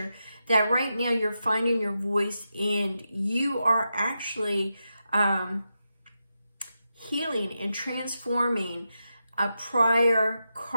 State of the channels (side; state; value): both; inverted; correlation -0.88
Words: that right now you're finding your voice and you are actually healing and transforming a prior